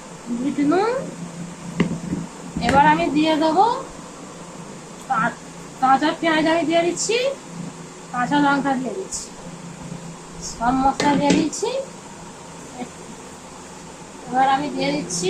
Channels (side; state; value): both; identical; correlation 1.00